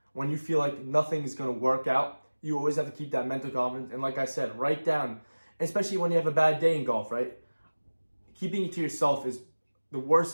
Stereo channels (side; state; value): both; inverted; correlation -1.00